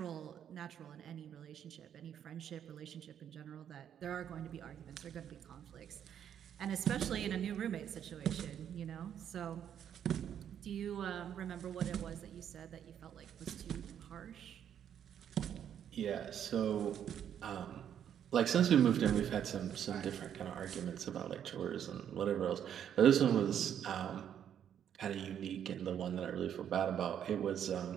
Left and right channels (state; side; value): quieter; left; 9.3 dB